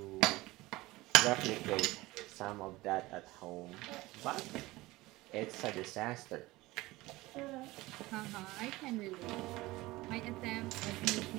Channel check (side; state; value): left; quieter; 19.7 dB